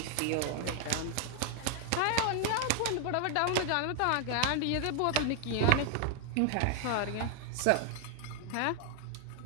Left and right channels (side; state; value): both; different; correlation 0.00